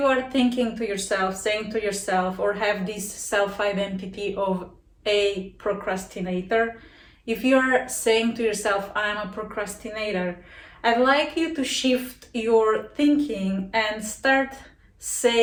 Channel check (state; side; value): identical; both; correlation 1.00